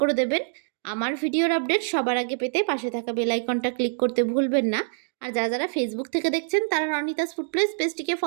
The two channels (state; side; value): silent; left; digital silence